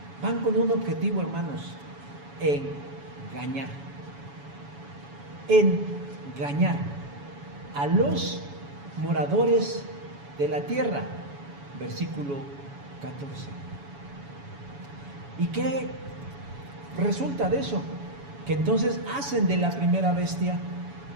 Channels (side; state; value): left; late; 7.1 ms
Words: van con un objetivo, hermanos, engañar a los moradores de la tierra. Versículo 14. ¿Y qué resulta de eso? Que entonces hacen de la primera bestia